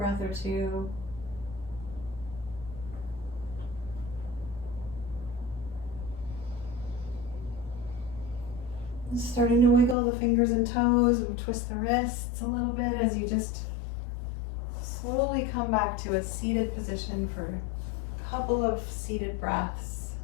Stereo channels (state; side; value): drops out; right; at 10.0 s